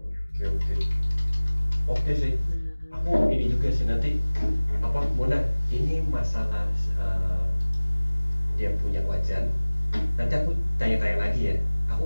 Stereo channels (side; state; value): both; inverted; correlation -1.00